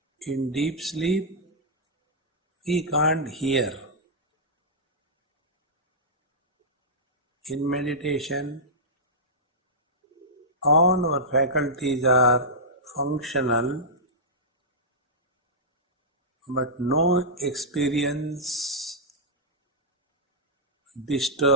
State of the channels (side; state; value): both; normal; correlation -0.13